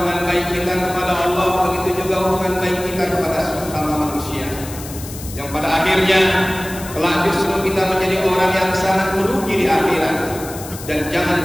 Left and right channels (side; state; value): left; noise; hiss, 13 dB below the sound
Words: baik kita kepada Allah, begitu juga hubungan baik kita kepada sesama manusia, yang pada akhirnya kelak justru kita menjadi orang yang sangat merugi di akhirat. Dan